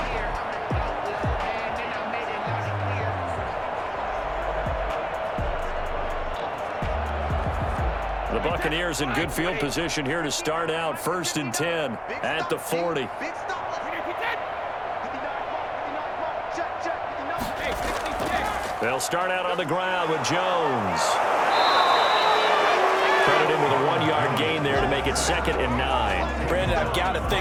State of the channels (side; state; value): both; identical; correlation 1.00